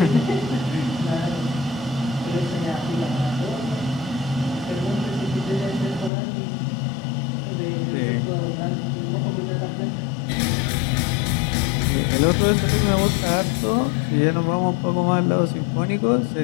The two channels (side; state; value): right; drops out; at 6.1 s